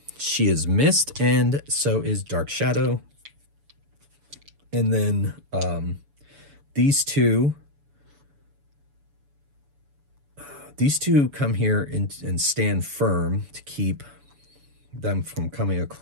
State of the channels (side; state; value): left; late; 7.0 ms